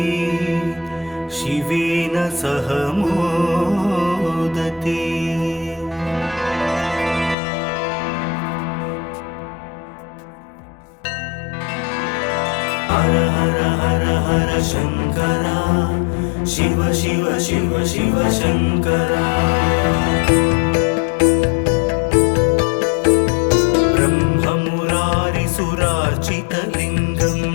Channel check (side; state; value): right; drops out; at 7.4 s